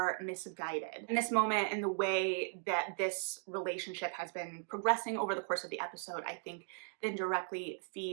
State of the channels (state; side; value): silent; left; 53 dB below the other